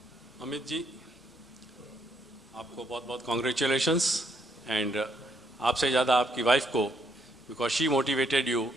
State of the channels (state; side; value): normal; both; correlation 0.73